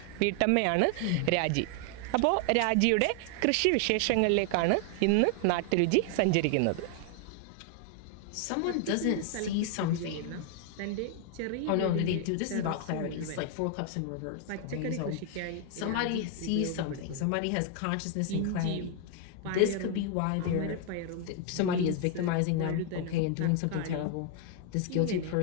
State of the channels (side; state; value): both; different; correlation 0.00